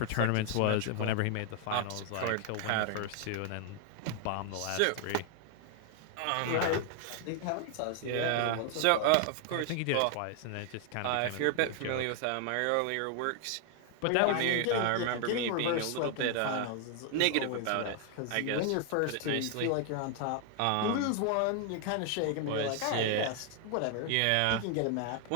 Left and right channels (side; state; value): both; different; correlation 0.00